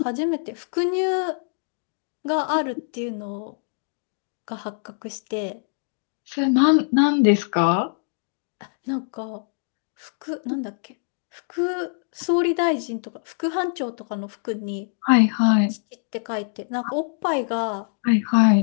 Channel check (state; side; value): silent; right; 62 dB below the other